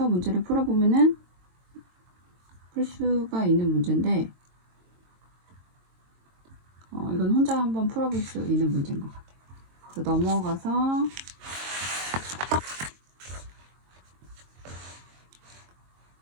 문제를 풀어보면은 풀 수가 있는 문제인데 이건 혼자 한번 풀어볼 수 있는 문제인 것 같아요. 그래서 넘어가서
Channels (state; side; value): late; left; 22 ms